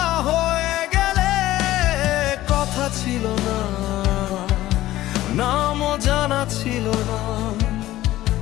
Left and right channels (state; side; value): quieter; right; 15.4 dB